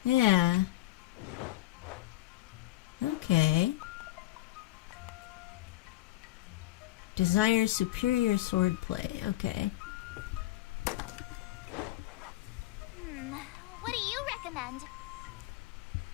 Yeah. Okay. Desire superior swordplay. Okay. What do you recommend?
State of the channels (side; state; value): right; quieter; 16.5 dB